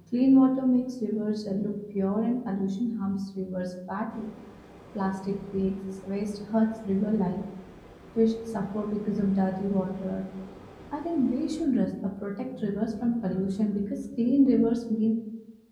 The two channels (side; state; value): both; identical; correlation 1.00